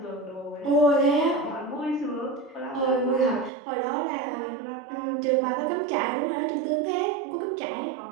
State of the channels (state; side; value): drops out; left; at 3.5 s